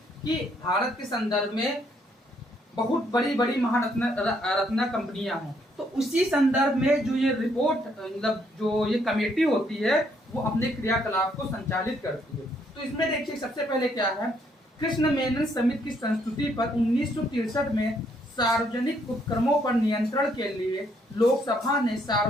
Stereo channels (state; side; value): normal; both; correlation 0.70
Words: कि भारत के संदर्भ में बहुत बड़ी बड़ी महारत्न कंपनियां हैं, तो उसी संदर्भ में जो ये रिपोर्ट मतलब जो ये कमेटी होती है वो अपने क्रियाकलाप को संचालित करती है। तो इसमें देखिए सबसे पहले क्या है, कृष्ण मेनन समिति की संस्तुति पर 1963 में सार्वजनिक उपक्रमों पर नियंत्रण के लिए लोकसभा ने